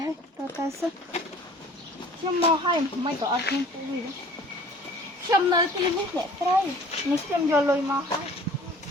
ហើយទៅសិខ្ញុំមកហើយមិនក៏អត់ខ្ញុំពូវាខ្ញុំនៅទីនេះអ្នកស្រីនេះខ្ញុំយកលុយមកហើយ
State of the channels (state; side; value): normal; both; correlation 0.49